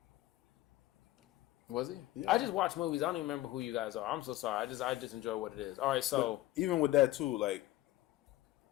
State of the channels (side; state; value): right; quieter; 16.2 dB